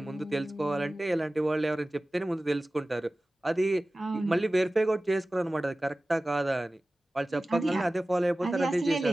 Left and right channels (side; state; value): both; normal; correlation 0.97